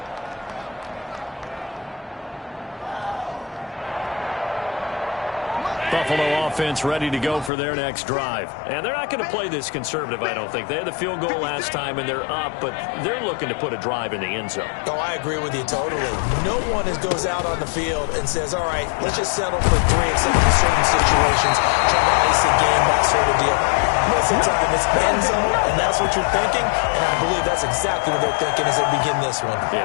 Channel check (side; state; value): right; drops out; at 7.5 s